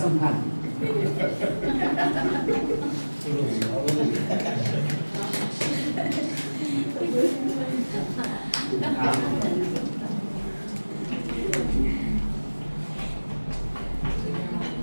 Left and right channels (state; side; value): inverted; both; correlation -1.00